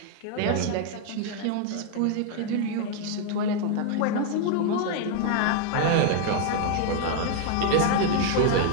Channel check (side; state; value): both; different; correlation 0.01